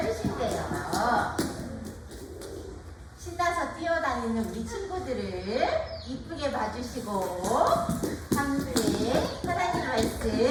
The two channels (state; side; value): identical; both; correlation 1.00